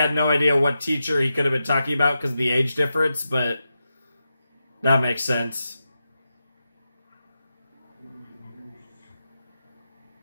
no idea what teacher he could have been talking about because of the age difference, but that makes sense.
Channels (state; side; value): inverted; both; correlation -0.90